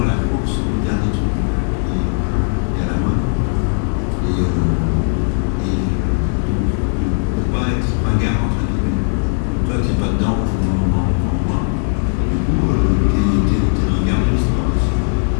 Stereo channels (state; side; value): silent; right; digital silence